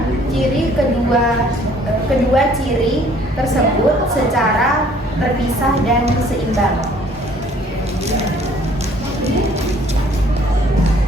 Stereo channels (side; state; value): both; normal; correlation 0.58